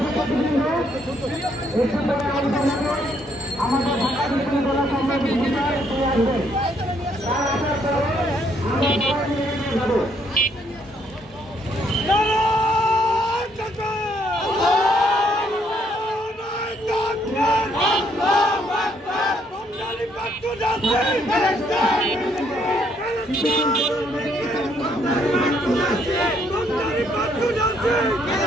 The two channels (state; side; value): normal; both; correlation 0.70